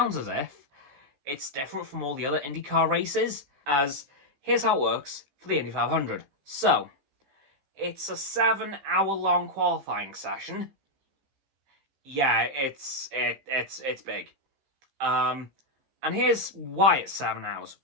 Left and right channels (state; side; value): late; left; 15 ms